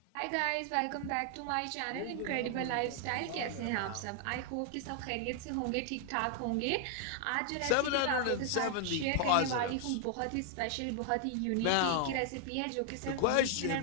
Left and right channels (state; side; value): different; both; correlation 0.00